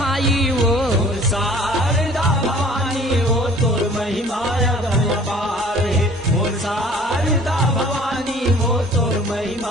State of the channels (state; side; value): normal; both; correlation 0.50